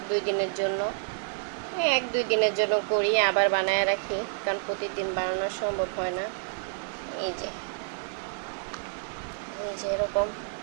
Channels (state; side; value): silent; left; digital silence